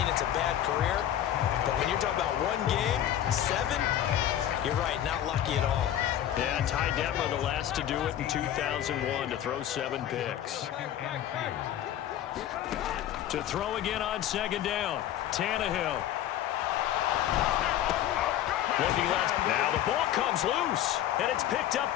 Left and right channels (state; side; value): quieter; right; 11.5 dB